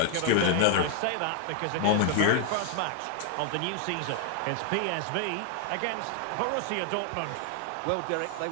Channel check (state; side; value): different; both; correlation 0.00